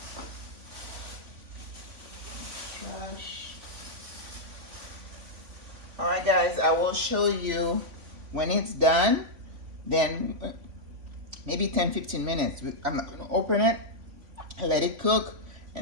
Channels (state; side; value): late; left; 3.4 ms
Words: All right, guys, I will show you when it's done. Then maybe 10-15 minutes. I'm going to open it, let it cook,